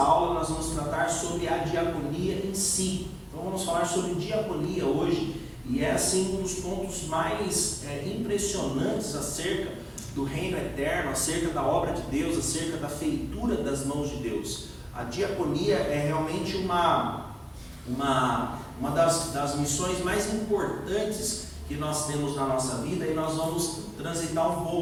nós vamos tratar sobre a diaconia em si. Então vamos falar sobre diaconia hoje, e é assim um dos pontos mais impressionantes acerca do reino eterno, acerca da obra de Deus, acerca da feitura das mãos de Deus. A diaconia é realmente uma das missões mais importantes que nós temos na nossa vida, e nós vamos transitar um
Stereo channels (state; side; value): identical; both; correlation 1.00